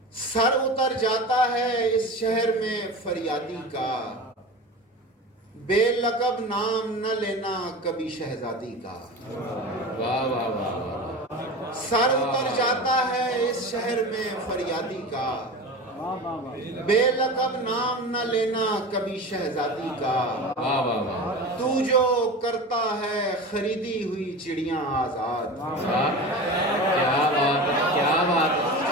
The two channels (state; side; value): normal; both; correlation 0.30